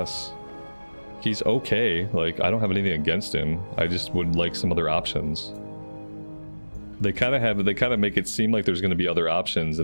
He's okay. Like, I don't have anything against him. I just would like some other options. They kind of make it seem like there's going to be other options,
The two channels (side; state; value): both; inverted; correlation -1.00